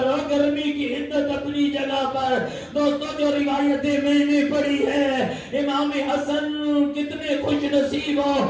اور گرمی کی حدت اپنی جگہ پر۔ دوستو جو روایتیں میں نے پڑھی ہے، امام حسن کتنے خوش نصیب ہو،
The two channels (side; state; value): both; identical; correlation 1.00